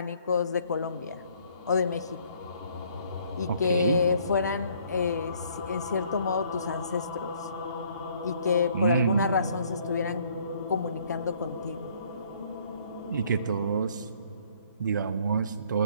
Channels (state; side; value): inverted; both; correlation -0.62